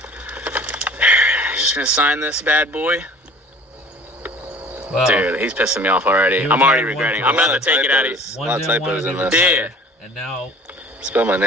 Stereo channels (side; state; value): both; normal; correlation 0.47